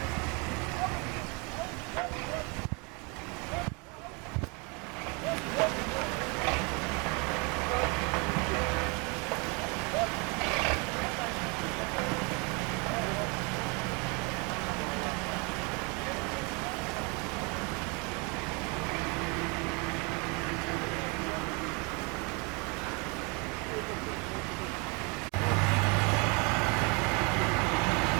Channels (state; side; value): quieter; left; 31.2 dB